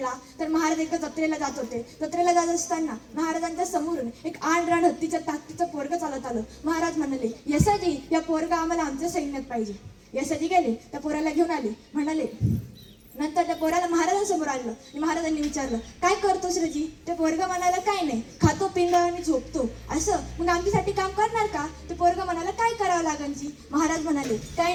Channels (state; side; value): identical; both; correlation 1.00